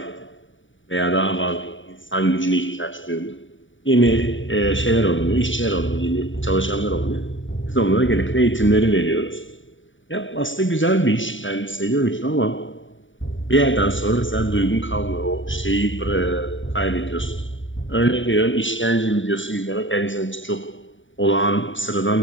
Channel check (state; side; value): late; right; 0.56 ms